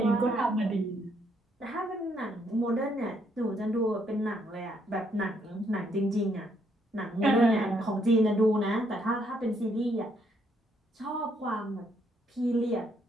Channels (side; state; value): both; normal; correlation 0.72